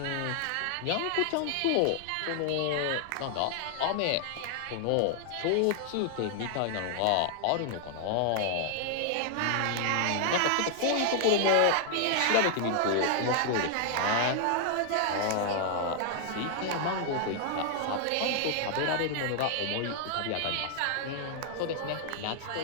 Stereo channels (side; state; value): both; different; correlation 0.00